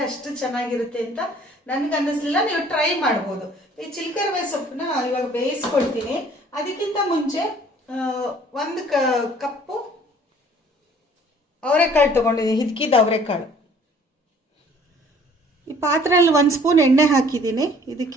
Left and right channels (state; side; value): normal; both; correlation 0.55